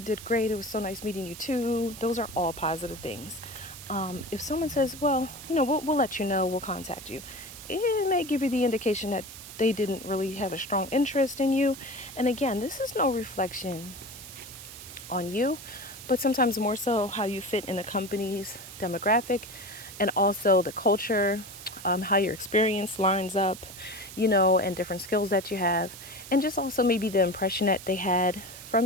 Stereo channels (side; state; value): right; noise; hiss, 14 dB below the sound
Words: great, it was so nice meeting you too. Those are all positive things. If someone says, well, we'll let you know, we'll contact you, it may give you the indication that they didn't really have a strong interest in you. And again, this is no reflection on you, but sometimes more so how you fit in a company's demographic, and also the culture, how your experience lines up, and different skills that you have, and just also maybe the impression that they had